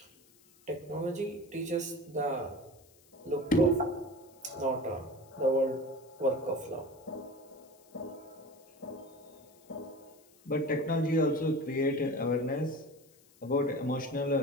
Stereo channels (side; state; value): left; noise; hiss, 28 dB below the sound